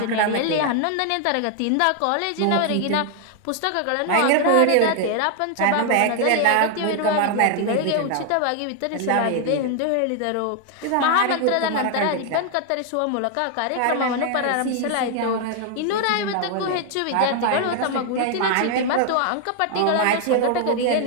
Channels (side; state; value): both; different; correlation 0.00